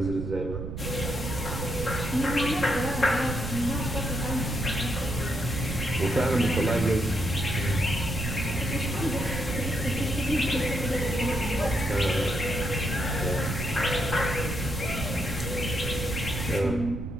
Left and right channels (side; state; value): right; noise; rumble, 6 dB below the sound